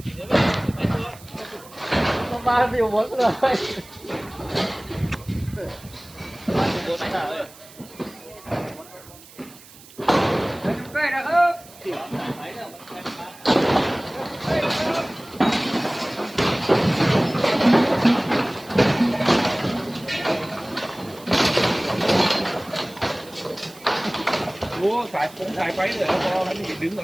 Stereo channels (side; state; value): right; noise; hiss, 21 dB below the sound